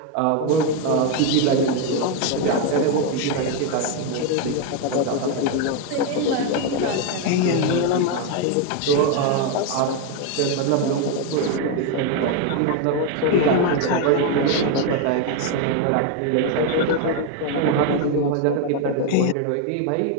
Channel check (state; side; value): different; both; correlation 0.01